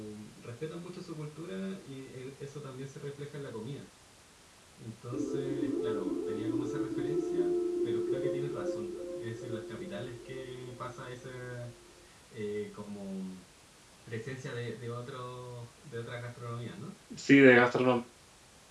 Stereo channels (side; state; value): both; identical; correlation 1.00